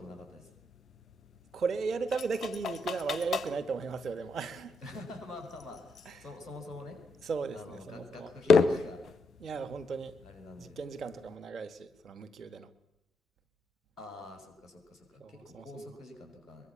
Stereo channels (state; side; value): normal; both; correlation 0.79